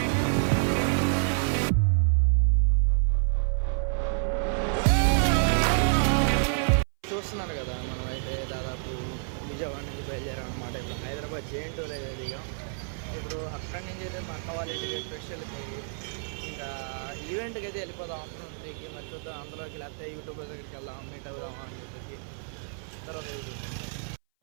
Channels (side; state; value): left; silent; 58 dB below the other